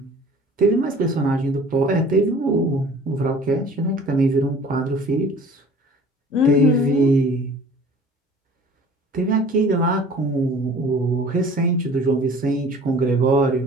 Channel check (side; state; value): both; normal; correlation 0.47